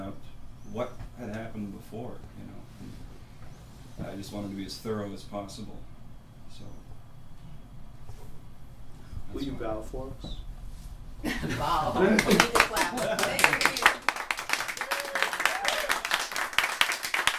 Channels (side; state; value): both; identical; correlation 1.00